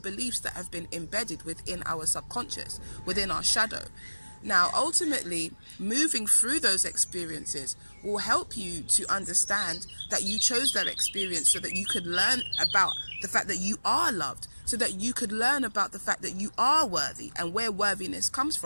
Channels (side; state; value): both; inverted; correlation -1.00